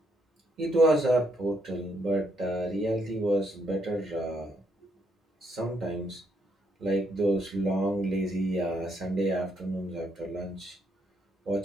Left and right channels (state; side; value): normal; both; correlation 0.73